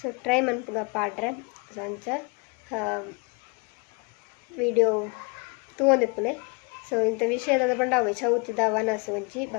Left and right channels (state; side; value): quieter; right; 31.8 dB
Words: ಟ್ರೈ ಮನ್ಪುಗ ಪಾಡ್ರೆ ಸೊ ಅಂಚ ವಿಡಿಯೋ ತೂವೊಂದಿಪ್ಪುಲೆ. ಸೊ ಇಂಥ ವಿಷಯದ ಪಂಡ ಅವೆ ಚೌತಿದ ವನಸು ಒಂಚಿ